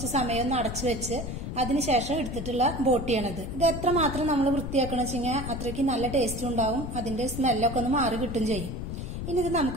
സമയം ഒന്ന് അടച്ചു വെച്ച് അതിനുശേഷം എടുത്തിട്ടുള്ള ബോട്ടിയാണിത്. ഇത് എത്രമാത്രം നമ്മൾ വൃത്തിയാക്കണം വെച്ചാൽ അത്രയ്ക്ക് നല്ല ടേസ്റ്റ് ഉണ്ടാവും. അതിന്റെ സ്മെല്ലൊക്കെ ഒന്ന് മാറി കിട്ടും ചെയ്യും. ഇനി ഇത്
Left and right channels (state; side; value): noise; left; rumble, 6 dB below the sound